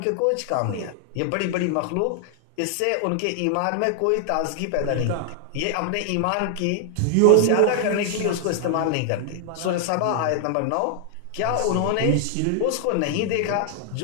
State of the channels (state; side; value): different; both; correlation 0.00